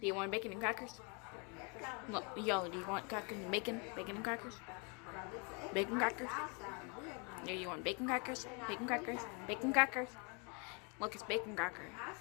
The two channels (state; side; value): quieter; right; 33.9 dB